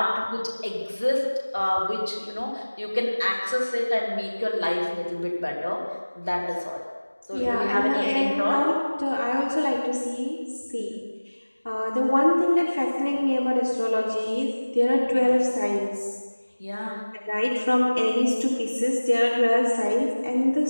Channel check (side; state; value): both; inverted; correlation -1.00